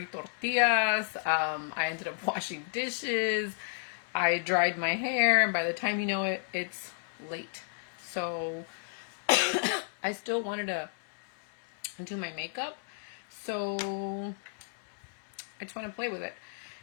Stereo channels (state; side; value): silent; right; digital silence